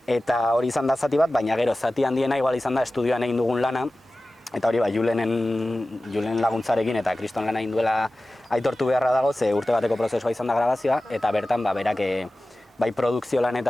eta hori izan da zati bat, baina gero zati handiena igual izan da estudioan egin dugun lana, eta hori Julenen laguntzarekin eta Kriston lana egin duela aitortu beharra dago, ze urte bateko prozesua izan da grabazioa, eta bertan berak bai produkzio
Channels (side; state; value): both; normal; correlation 0.96